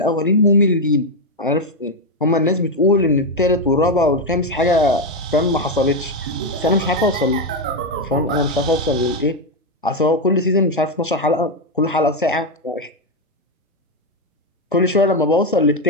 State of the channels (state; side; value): normal; both; correlation 0.06